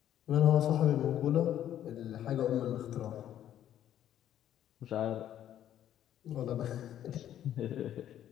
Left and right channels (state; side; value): quieter; right; 11.2 dB